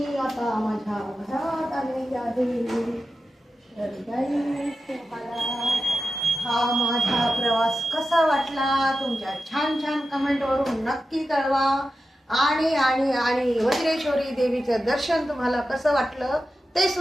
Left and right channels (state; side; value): normal; both; correlation 0.92